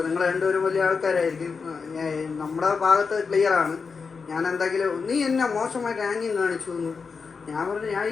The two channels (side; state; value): right; quieter; 5.2 dB